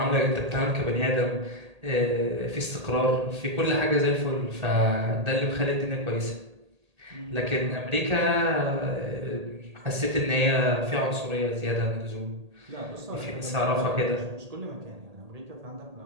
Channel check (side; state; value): left; late; 1.8 ms